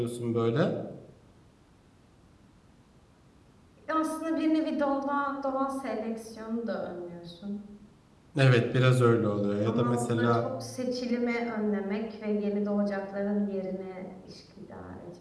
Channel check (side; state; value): both; identical; correlation 1.00